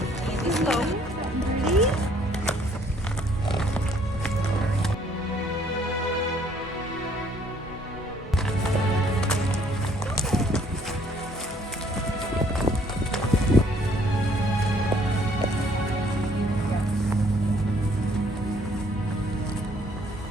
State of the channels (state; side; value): normal; both; correlation 0.62